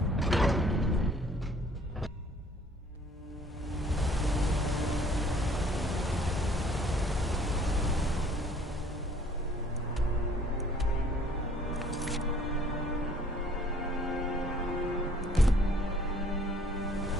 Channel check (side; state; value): both; normal; correlation 0.58